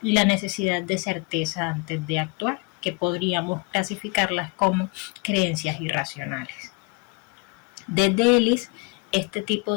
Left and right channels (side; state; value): right; quieter; 30.0 dB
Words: y la necesidad de certeza antes de actuar, que podríamos clasificarlas como creencias irracionales. Desde Ellis, este